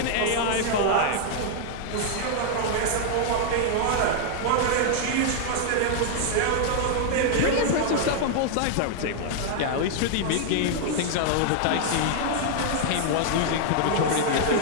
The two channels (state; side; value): different; both; correlation -0.01